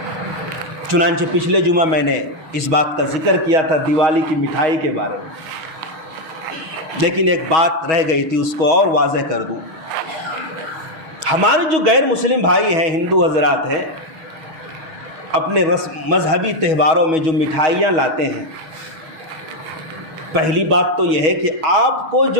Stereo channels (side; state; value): left; late; 6.3 ms